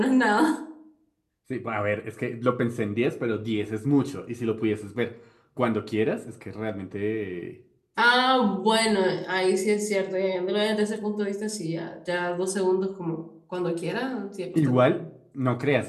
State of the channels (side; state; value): both; identical; correlation 1.00